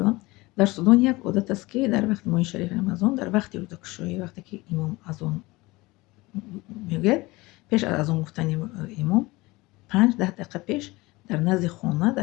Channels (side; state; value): right; quieter; 21.7 dB